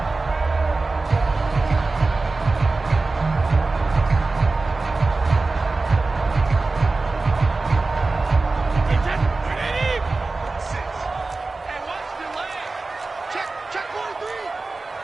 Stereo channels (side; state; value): left; quieter; 3.6 dB